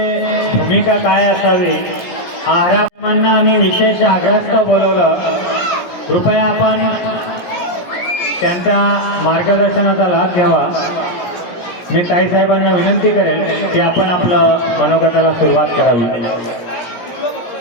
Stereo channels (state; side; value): late; right; 17 ms